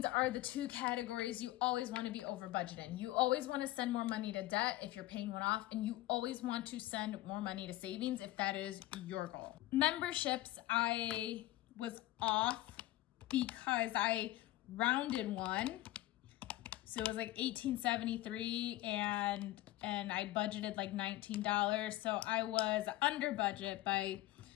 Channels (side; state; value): right; quieter; 16.5 dB